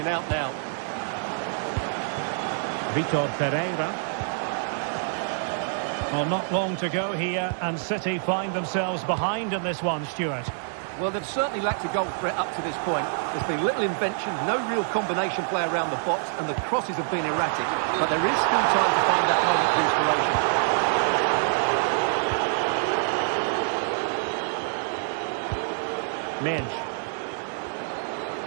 out now. Vitor Pereira. Well, not long to go here, and City find themselves behind in this one, Stuart. Well, they've certainly lacked a goal threat up to this point. There's been little invention, no real combination play around the box, and the crosses have been erratic. But there is still time to find that moment of inspiration. Mendes.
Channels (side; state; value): left; silent; 61 dB below the other